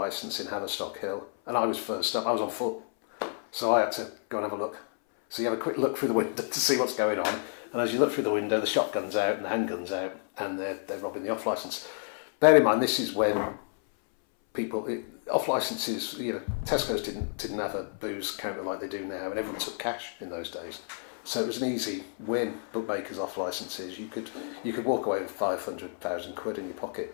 in Haverstock Hill, and I was first up. I was on foot, so I had to go and have a look. So you have a quick look through the window to see what's going on, and as you look through the window, the shotgun's out and the handgun's out, and they're robbing the off licence. Bear in mind, this is when off licences, Tesco's didn't have a booze counter like they do now, and everyone took cash in those days. So it was an easy win. Bookmakers off licences, you could walk away with 500,000 quid in your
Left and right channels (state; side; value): silent; right; 58 dB below the other